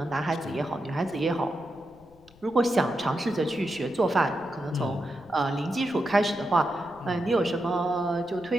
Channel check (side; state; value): left; noise; rumble, 27 dB below the sound